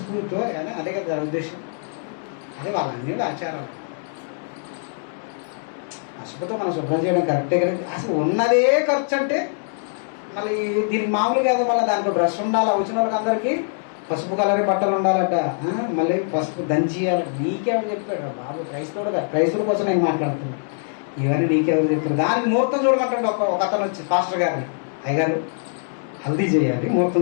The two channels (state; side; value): silent; right; digital silence